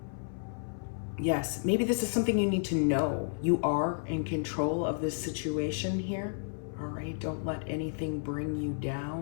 Yes, maybe this is something you need to know. You are in control of this situation here. All right, don't let anything bring you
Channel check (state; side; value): silent; right; 57 dB below the other